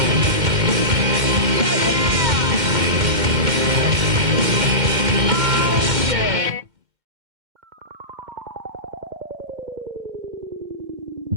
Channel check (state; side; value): late; left; 2.1 ms